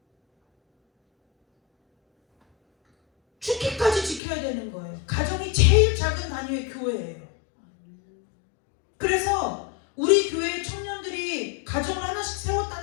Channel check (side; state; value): right; drops out; at 4.2 s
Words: 죽기까지 지켜야 되는 거예요. 가정이 제일 작은 단위의 교회예요. 그래서 우리 교회의 청년들이 가정을 하나씩